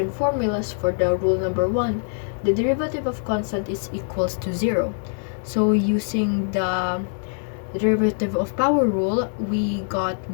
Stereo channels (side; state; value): right; silent; digital silence